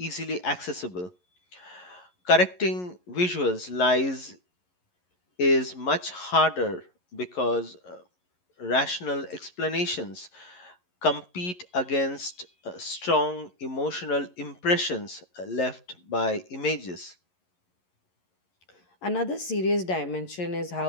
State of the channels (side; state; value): right; late; 11 ms